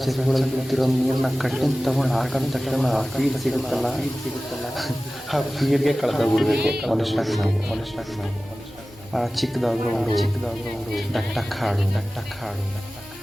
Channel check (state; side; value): normal; both; correlation 0.96